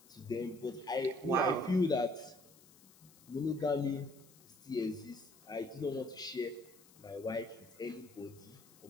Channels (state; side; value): noise; left; hiss, 24 dB below the sound